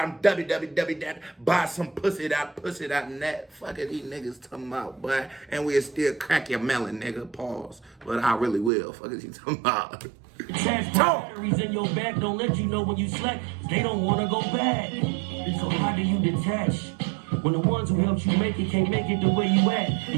www.buysompussy.net. Fuck it, these niggas talking about, boy. And we'll still crack your melon, nigga. Pause. But I really will. Fuck is you talking about? Attach batteries in your back, don't let you know when you slack. They don't want to go back. So how do you detach? When the ones who helped you make it can't make it the way you act.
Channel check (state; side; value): drops out; left; at 8.7 s